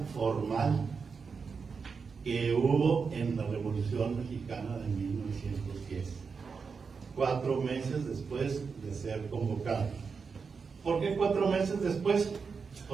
formal que hubo en la Revolución Mexicana de 1910, 4 meses después de ser convocado. ¿Por qué 4 meses después?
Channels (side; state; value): left; quieter; 5.4 dB